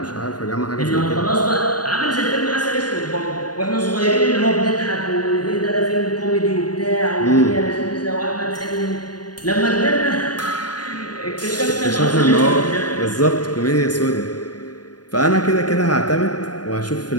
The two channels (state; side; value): late; right; 0.69 ms